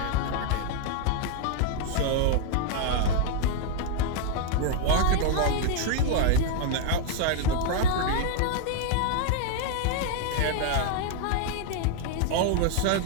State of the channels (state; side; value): different; both; correlation 0.00